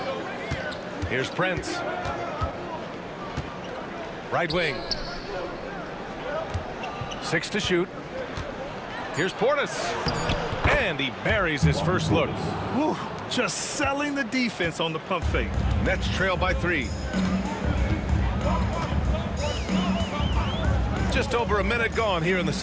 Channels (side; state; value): both; identical; correlation 1.00